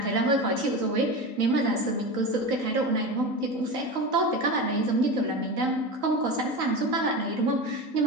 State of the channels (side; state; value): left; late; 3.9 ms